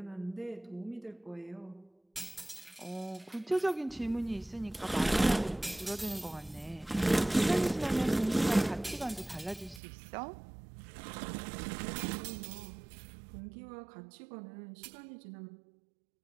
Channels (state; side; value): drops out; left; at 9.8 s